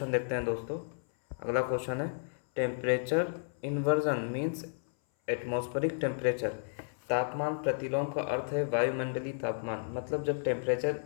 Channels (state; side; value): silent; right; 56 dB below the other